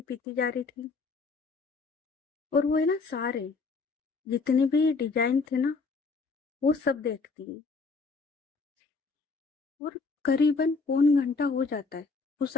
पीती जा रही थी। और वो है ना सारे जितने भी डिजाइन थे ना, वो सब देखती है। और करीबन पौन घंटा हो जाता है उस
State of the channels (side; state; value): right; quieter; 4.3 dB